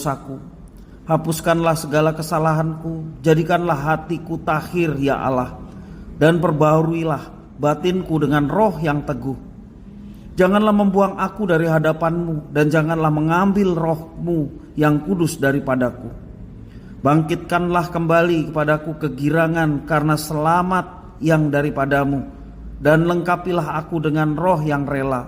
Hapuskanlah segala kesalahanku. Jadikanlah hatiku tahir ya Allah. Dan perbaharuilah batinku dengan roh yang teguh. Janganlah membuang aku dari hadapanmu, dan janganlah mengambil rohmu yang kudus daripadaku. Bangkitkanlah kembali kepadaku kegirangan karena selamat yang daripadamu, dan lengkapilah aku dengan roh yang rela.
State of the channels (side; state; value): both; identical; correlation 1.00